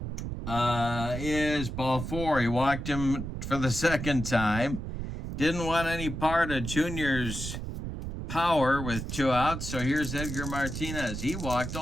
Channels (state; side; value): noise; right; rumble, 6 dB below the sound